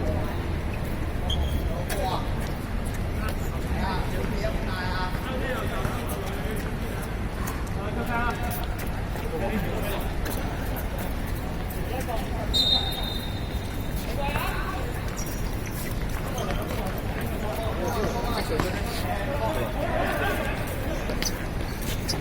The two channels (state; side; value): identical; both; correlation 1.00